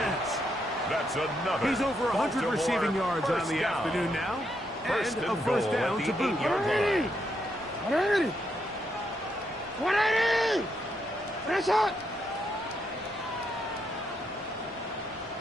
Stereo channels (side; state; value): both; normal; correlation 0.79